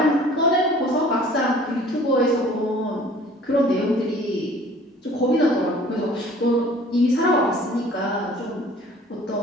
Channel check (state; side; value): normal; both; correlation 0.50